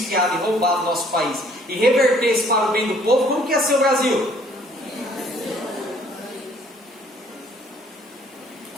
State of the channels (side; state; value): both; normal; correlation 0.60